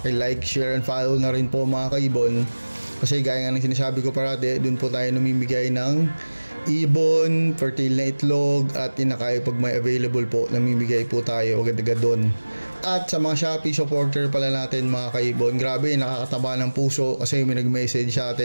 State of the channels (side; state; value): both; inverted; correlation -1.00